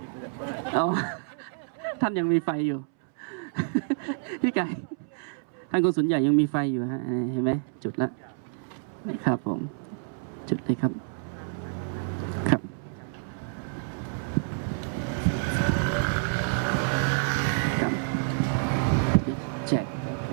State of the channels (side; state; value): left; silent; 59 dB below the other